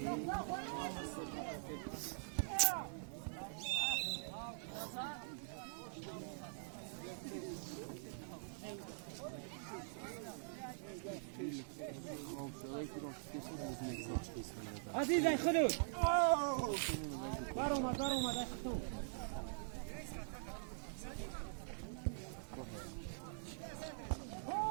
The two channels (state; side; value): silent; left; digital silence